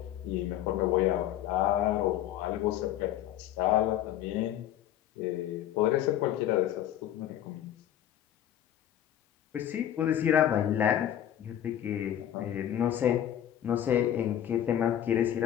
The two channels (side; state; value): right; quieter; 11.2 dB